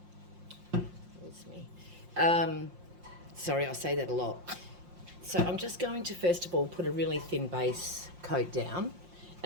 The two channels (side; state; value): left; late; 5.6 ms